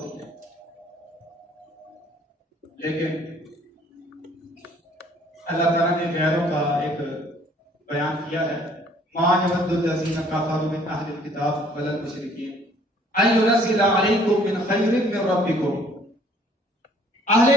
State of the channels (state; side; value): normal; both; correlation 0.59